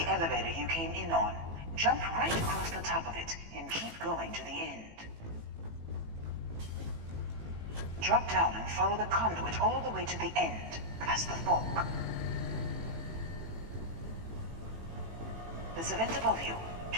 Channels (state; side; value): late; left; 18 ms